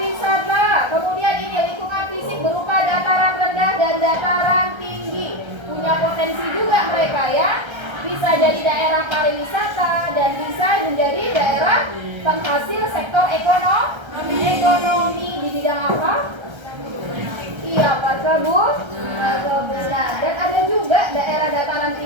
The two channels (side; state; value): left; late; 1.3 ms